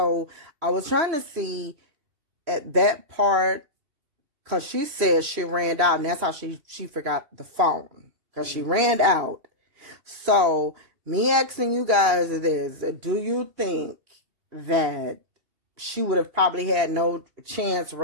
I was trying to see at that part, because she said she ran out, and that's how she forgot the phone, because she ran out. So me asking you guys is, do you think that she would have probably had no chance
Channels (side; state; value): left; late; 2.9 ms